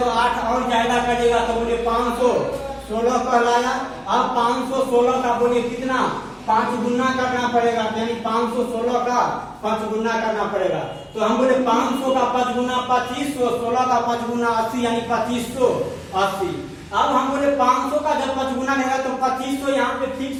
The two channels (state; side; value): identical; both; correlation 1.00